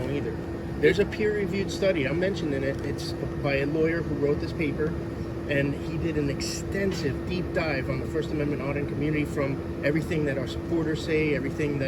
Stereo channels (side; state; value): both; identical; correlation 1.00